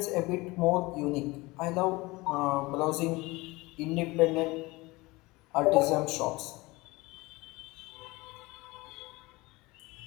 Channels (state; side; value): quieter; right; 22.2 dB